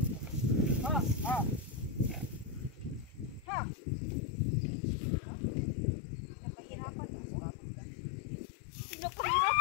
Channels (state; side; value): drops out; right; at 3.5 s